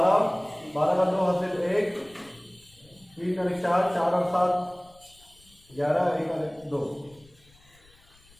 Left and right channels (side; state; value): left; noise; rumble, 28 dB below the sound